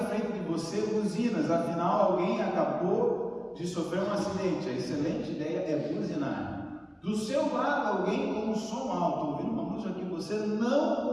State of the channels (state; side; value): identical; both; correlation 1.00